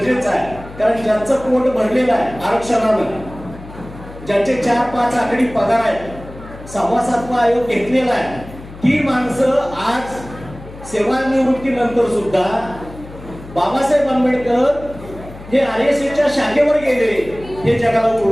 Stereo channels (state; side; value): noise; left; hum, 16 dB below the sound